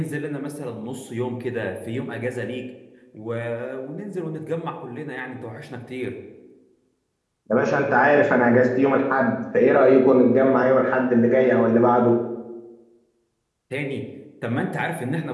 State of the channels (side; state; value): both; identical; correlation 1.00